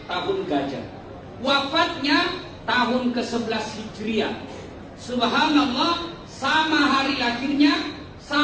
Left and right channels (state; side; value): identical; both; correlation 1.00